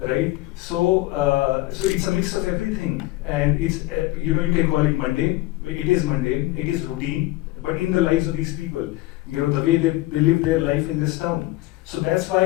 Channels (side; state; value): right; quieter; 18.5 dB